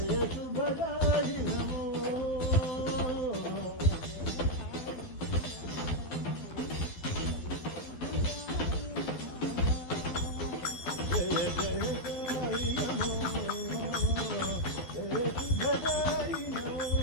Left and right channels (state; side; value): late; right; 12 ms